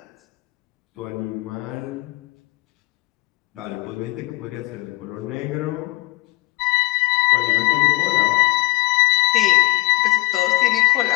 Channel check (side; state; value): right; quieter; 22.7 dB